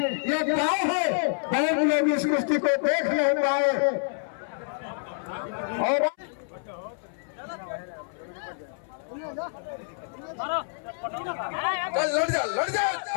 ये गाँव है, बहुत लोग इस कुश्ती को देख नहीं पाए। और लड़ जा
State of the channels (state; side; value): silent; right; 60 dB below the other